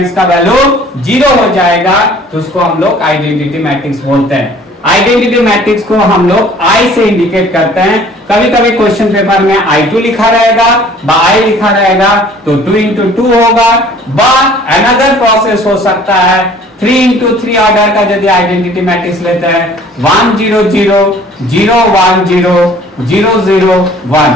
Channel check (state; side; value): normal; both; correlation 0.52